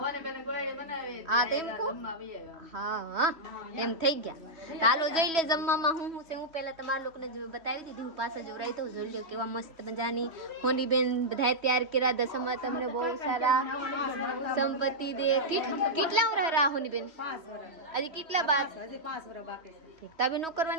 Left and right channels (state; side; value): late; left; 3.1 ms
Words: હા તો એમ કહો. હા એમ થઈ ગયા. ચાલો જોઈ લે જમવામાં હું છે. હું પહેલા તમારા લોકોને બતાવી દીધું. હું પાછા જોડાઈ તો જોઈ લો કેવા મસ્ત મજાની હોની બેન બધા તૈયાર કર્યા. દસમા તમને બહુ સારા સંપત્તિ દે. કેટલા વર્ષ રહ્યા હોની બેન? હજી કેટલા બાદ? તબે નો